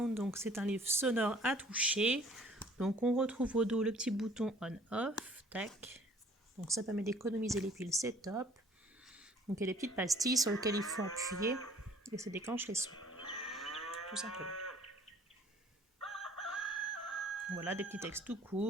Donc c'est un livre sonore à toucher. Donc on retrouve au dos le petit bouton on-off, tac. Donc ça permet d'économiser les piles, c'est top. Donc il y a des petites pastilles sur lesquelles il faut appuyer et ça déclenche les sons, tout simplement. Voilà, des petits textes tout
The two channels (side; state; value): both; normal; correlation 0.54